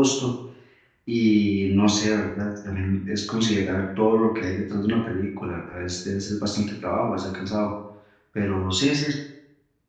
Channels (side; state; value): both; identical; correlation 1.00